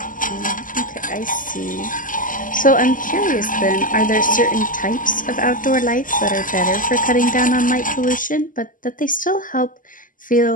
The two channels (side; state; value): right; late; 0.39 ms